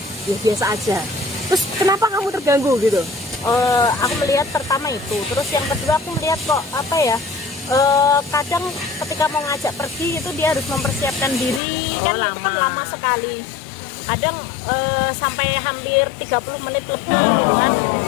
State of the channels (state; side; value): drops out; right; at 11.6 s